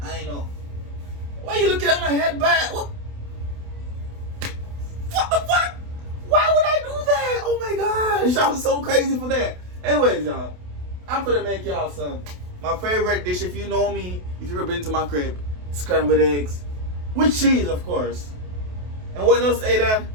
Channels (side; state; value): left; late; 28 ms